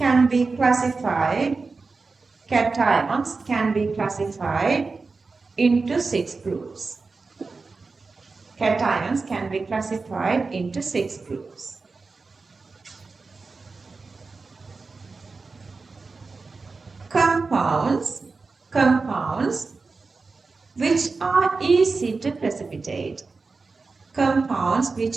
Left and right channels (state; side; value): quieter; left; 4.1 dB